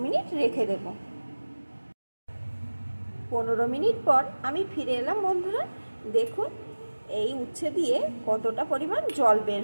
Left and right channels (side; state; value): both; inverted; correlation -1.00